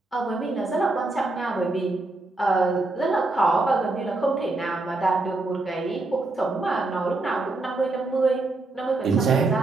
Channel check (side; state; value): left; quieter; 3.1 dB